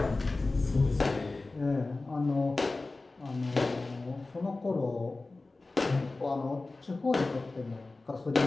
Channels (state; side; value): quieter; right; 3.3 dB